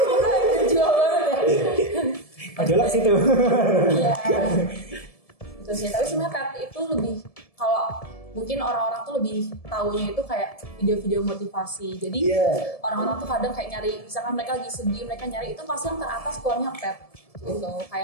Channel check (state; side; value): late; right; 1.7 ms